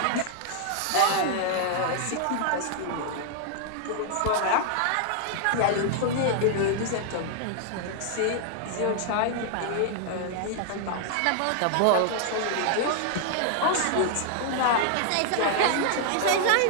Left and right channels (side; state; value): both; different; correlation 0.00